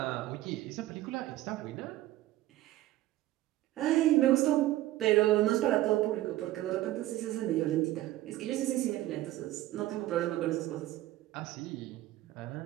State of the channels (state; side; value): quieter; left; 15.5 dB